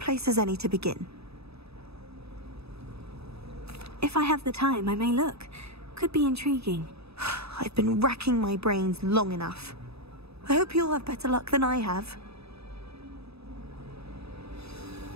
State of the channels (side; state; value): left; late; 0.78 ms